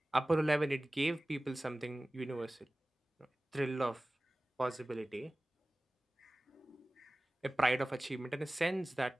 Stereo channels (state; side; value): normal; both; correlation 0.98